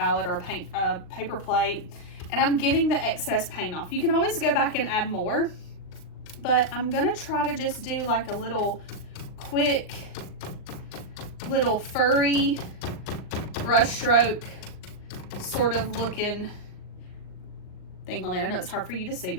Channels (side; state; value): right; late; 39 ms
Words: or a paper plate, and I'm getting the excess paint off. You can always go back and add more, but I'm going to try to just do like a little quick little furry brush stroke sort of looking thing on there. I know it's hard for you to see,